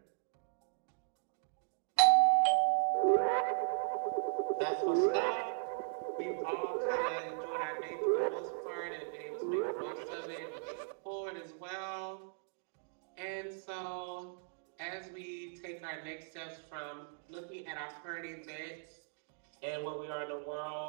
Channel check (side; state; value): left; silent; digital silence